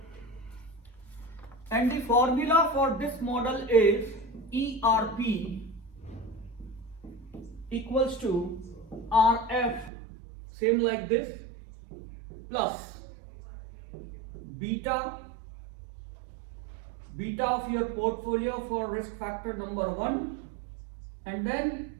And the formula for this model is ERP equals to RF, same like this, plus beta of your portfolio for risk factor number 1, and then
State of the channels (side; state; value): left; drops out; at 9.9 s